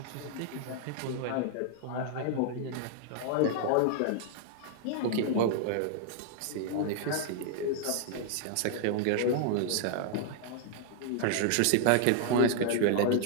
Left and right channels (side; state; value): both; different; correlation 0.00